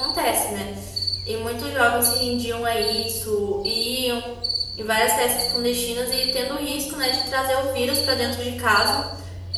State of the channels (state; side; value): identical; both; correlation 1.00